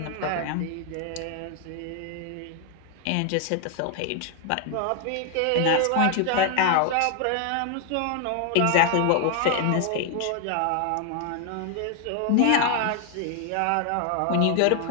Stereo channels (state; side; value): different; both; correlation 0.00